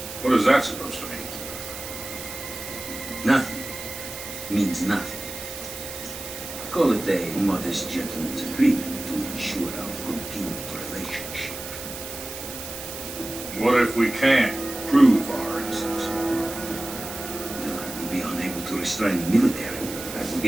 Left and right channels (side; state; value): right; noise; hiss, 10 dB below the sound